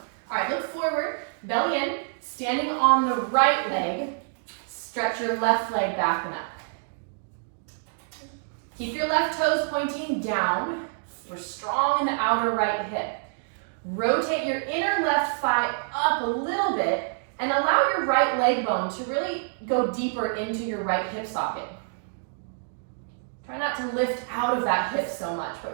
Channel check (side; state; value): left; silent; digital silence